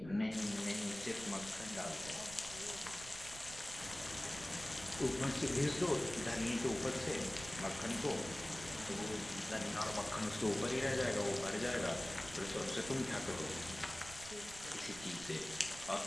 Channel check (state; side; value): noise; right; rumble, 15 dB below the sound